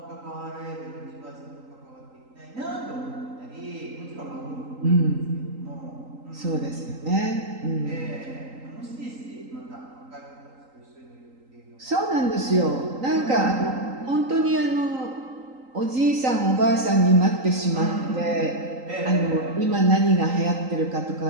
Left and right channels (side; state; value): left; late; 3.8 ms